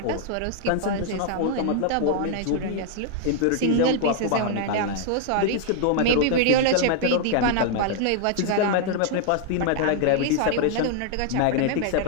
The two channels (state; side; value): different; both; correlation 0.00